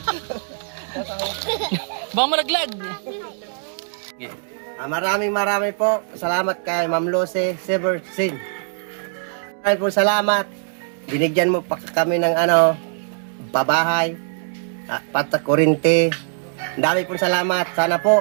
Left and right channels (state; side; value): silent; left; 64 dB below the other